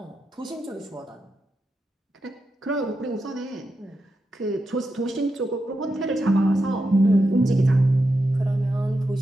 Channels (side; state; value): both; normal; correlation 0.87